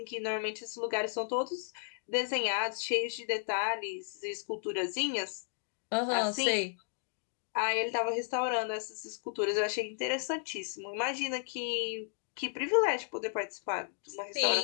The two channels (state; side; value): silent; right; digital silence